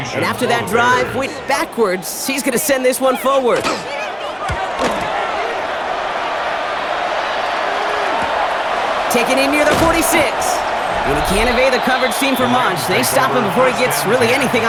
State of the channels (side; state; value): both; identical; correlation 1.00